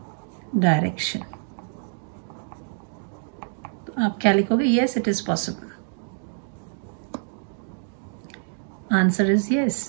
direction. तो आप क्या लिखोगे, yes it is possible. Answer is yes,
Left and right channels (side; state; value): left; silent; digital silence